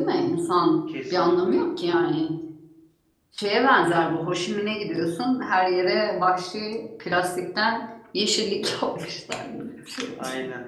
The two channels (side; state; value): both; identical; correlation 1.00